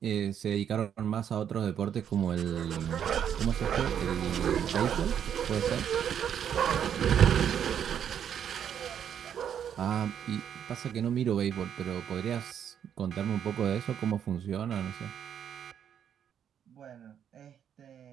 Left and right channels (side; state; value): left; quieter; 8.9 dB